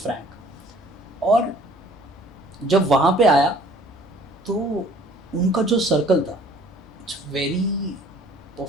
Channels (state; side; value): normal; both; correlation 0.54